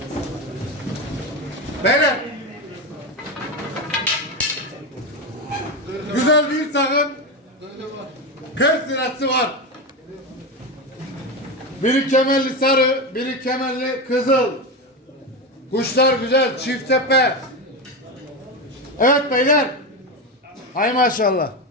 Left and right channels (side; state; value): both; normal; correlation 0.16